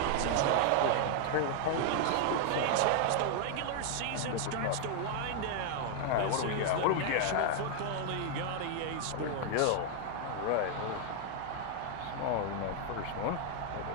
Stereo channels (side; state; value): both; different; correlation 0.00